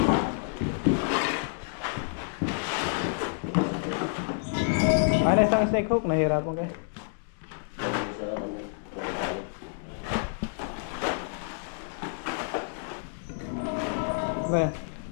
Ano isang snake hook? Nahirapan kayo? Ano yan?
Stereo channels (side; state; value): right; silent; digital silence